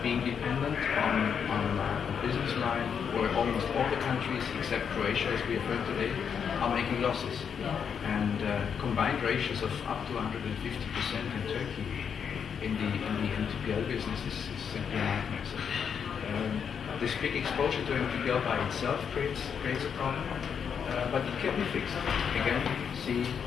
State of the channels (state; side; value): quieter; right; 7.2 dB